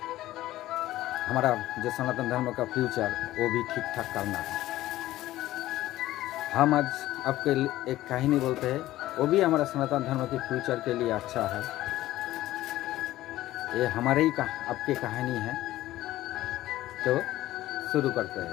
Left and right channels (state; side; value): quieter; right; 15.4 dB